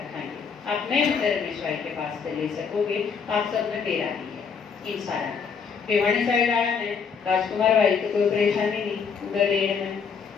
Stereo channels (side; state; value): right; quieter; 6.0 dB